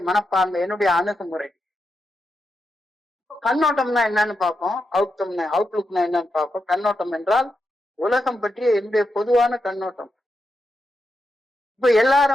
மனப்பான்மை, என்னுடைய அணுகுமுறை. கண்ணோட்டம்னா என்னன்னு பார்ப்போம். அவுட்லுக்னா என்னன்னு பார்ப்போம். கண்ணோட்டம் என்றால் உலகம் பற்றிய என்னுடைய பொதுவான கண்ணோட்டம். இப்ப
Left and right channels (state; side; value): normal; both; correlation 0.86